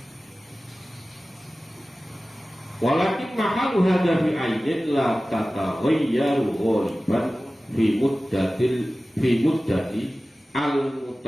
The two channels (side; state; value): both; normal; correlation 0.96